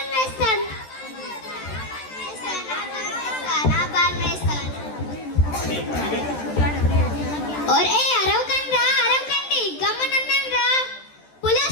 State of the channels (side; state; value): right; late; 14 ms